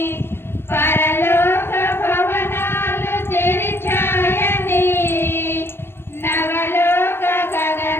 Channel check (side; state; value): right; late; 0.11 ms